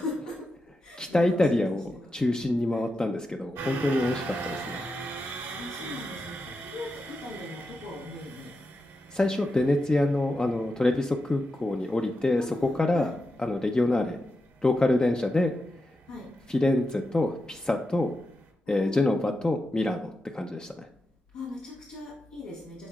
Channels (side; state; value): both; normal; correlation 0.88